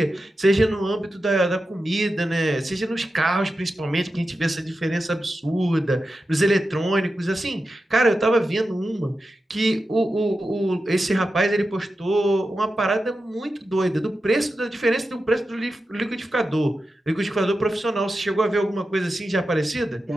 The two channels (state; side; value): normal; both; correlation 0.91